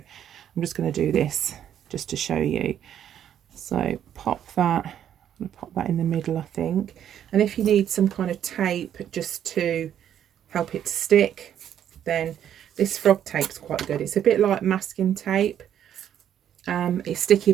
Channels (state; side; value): quieter; left; 10.0 dB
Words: just going to do this just to show you. So pop that. I'm going to pop that in the middle, I think. And if you need some kind of tape just to help it to stick, then this frog tape's quite good. It's a bit like masking tape. It's sticky,